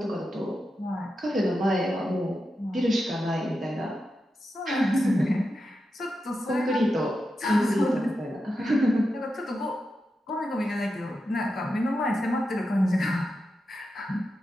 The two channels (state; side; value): normal; both; correlation 0.89